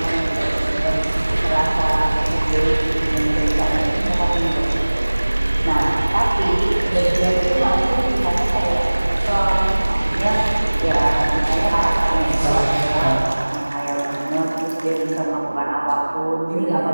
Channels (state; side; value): inverted; both; correlation -1.00